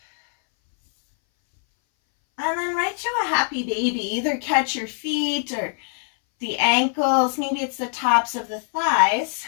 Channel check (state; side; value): silent; right; 60 dB below the other